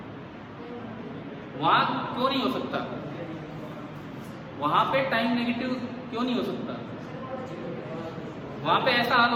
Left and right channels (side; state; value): both; identical; correlation 1.00